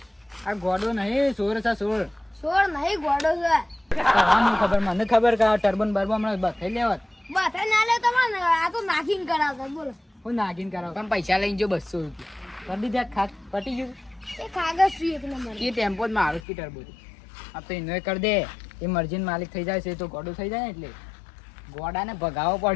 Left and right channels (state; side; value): drops out; right; at 16.4 s